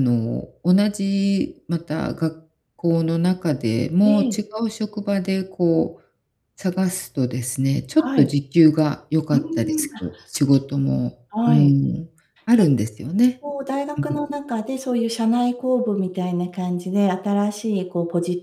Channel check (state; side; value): identical; both; correlation 1.00